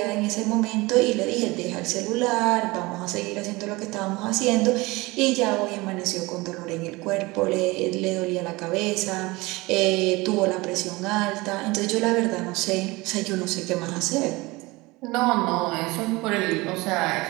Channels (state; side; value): quieter; left; 22.5 dB